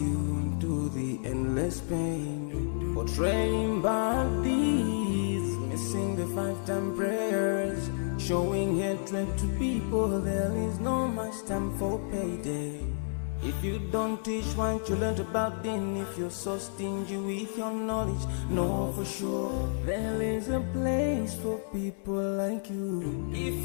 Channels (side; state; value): right; silent; digital silence